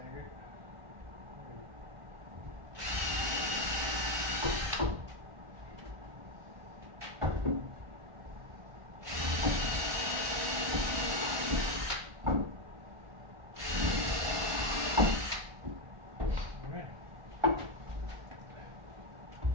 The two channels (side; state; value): left; late; 1.5 ms